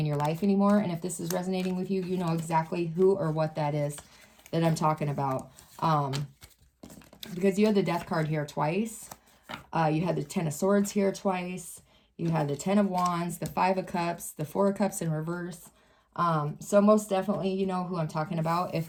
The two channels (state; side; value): identical; both; correlation 1.00